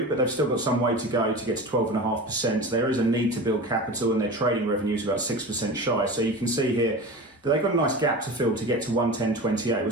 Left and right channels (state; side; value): normal; both; correlation 0.31